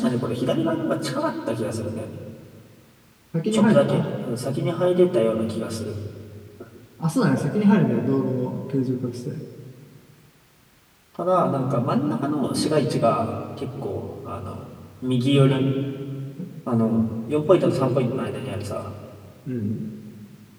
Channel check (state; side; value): identical; both; correlation 1.00